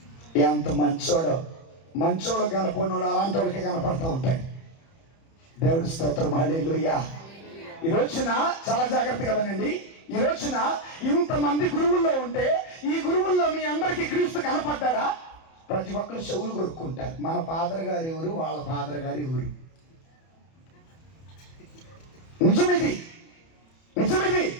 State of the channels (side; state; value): right; late; 31 ms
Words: ఎంత మంచోడు కనపడినోడు అలాంటి వాళ్ళకి కనపడతా ఉంటాయి. దేవుడి స్తోత్రం, హల్లెలూయా. ఈ రోజున చాలా జాగ్రత్తగా వినండి. ఈ రోజున ఇంతమంది గురువుల్లో ఉంటే ఈ గురువుల్లో మీ అందరికీ క్రీస్తు కనపడ్డాడా? ప్రతి ఒక్కరు చెవులు కొరుక్కుంటారు. మన ఫాదర్ గారు ఎవరు, వాళ్ళ ఫాదర్ గారు ఎవరు? నిజమిది.